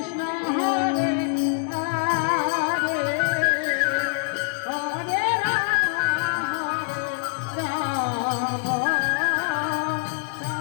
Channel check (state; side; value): silent; right; digital silence